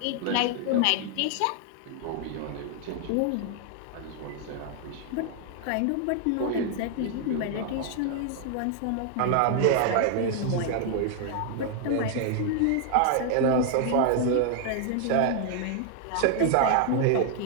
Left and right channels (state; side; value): different; both; correlation 0.00